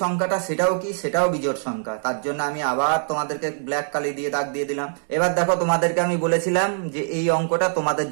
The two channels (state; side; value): silent; left; digital silence